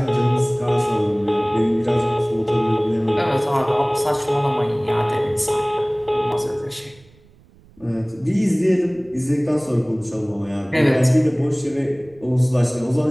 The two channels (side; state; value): right; noise; rumble, 28 dB below the sound